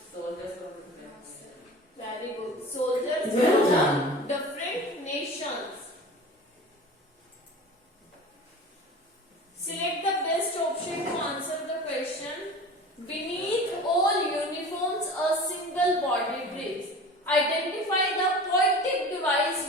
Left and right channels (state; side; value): normal; both; correlation 0.38